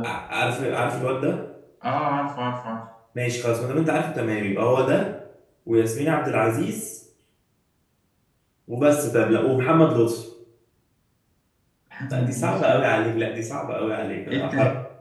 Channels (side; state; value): both; identical; correlation 1.00